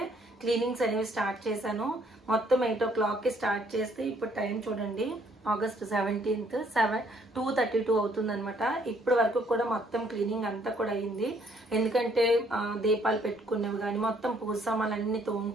క్లీనింగ్స్ అనేవి స్టార్ట్ చేశాను. మొత్తం 8 o'clockకి స్టార్ట్ చేస్తే ఇప్పుడు టైం చూడండి, ఆగస్ట్ 17th 2:32 అవుతుంది అనమాట. ఇప్పటి వరకు కూడా మొత్తం క్లీనింగ్ అంతా కూడా అయింది. ఎందుకంటే దీపాలు పెట్టుకునేవి కానీ మొత్తం పూజ సామాన్లన్నీ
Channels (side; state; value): both; normal; correlation 0.65